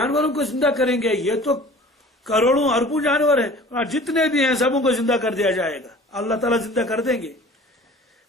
کو زندہ کریں گے، یہ تو کروڑوں اربوں جانور ہیں، اور جتنے بھی ہیں سبوں کو زندہ کر دیا جائے گا، اللہ تعالیٰ زندہ کر دیں گے.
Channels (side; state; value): both; normal; correlation 0.45